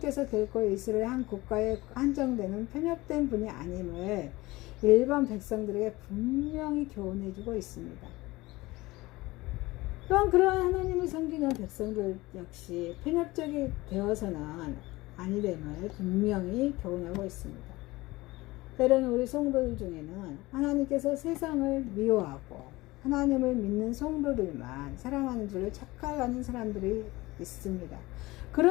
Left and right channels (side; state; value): right; quieter; 20.3 dB